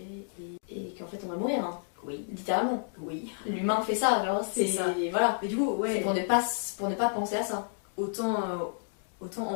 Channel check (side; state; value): right; silent; digital silence